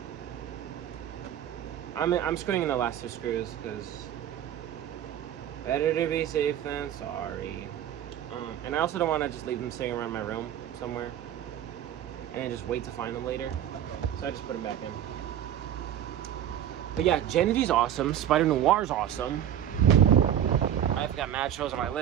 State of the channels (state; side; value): quieter; left; 10.5 dB